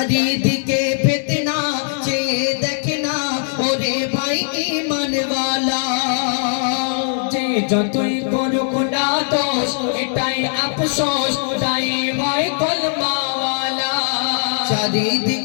ফিতনা চেয়ে দেখে না ওরে ভাই ঈমানওয়ালা যে যতই করুক না দোষ এটাই আফসোস তাই ভাই কলমাওয়ালা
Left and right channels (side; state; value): right; silent; digital silence